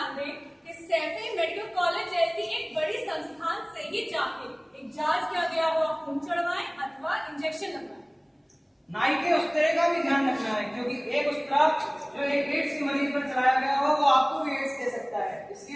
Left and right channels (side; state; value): both; identical; correlation 1.00